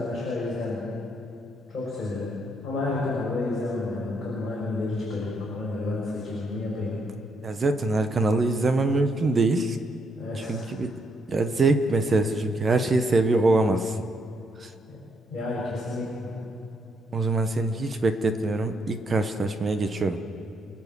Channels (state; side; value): normal; both; correlation 0.75